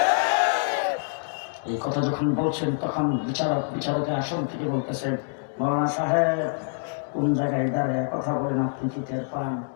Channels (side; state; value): right; silent; digital silence